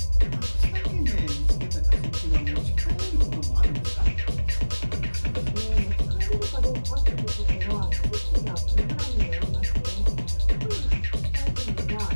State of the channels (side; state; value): both; inverted; correlation -1.00